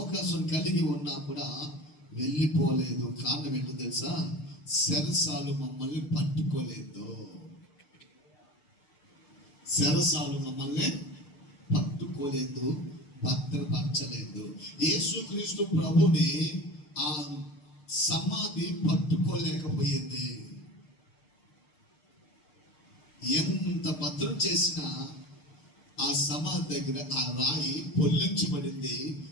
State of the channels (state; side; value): late; right; 6.6 ms